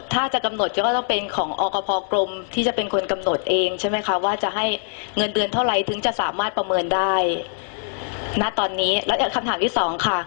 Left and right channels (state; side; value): silent; right; digital silence